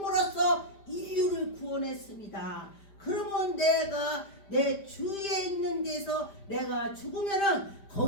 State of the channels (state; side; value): late; right; 5.0 ms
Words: 인류를 구원했습니다. 그러면 내가 내 주위에 있는 데서 내가 죽으면은